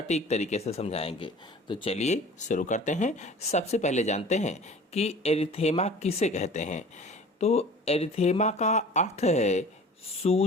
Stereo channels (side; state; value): both; normal; correlation 0.44